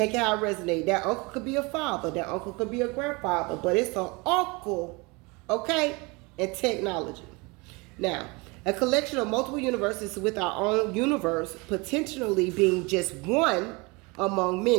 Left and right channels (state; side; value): quieter; left; 26.9 dB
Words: it how it resonates. That uncle could be a father, that uncle could be a grandfather, but it's an uncle, okay, and technology. Now, a collection of multiple universes with our own universe potentially being just one among